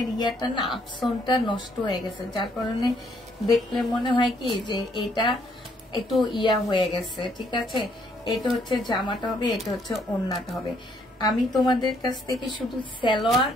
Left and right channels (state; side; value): normal; both; correlation 0.69